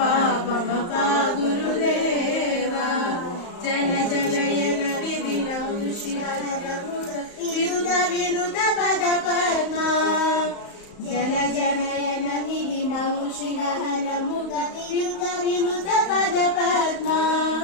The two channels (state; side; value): late; right; 35 ms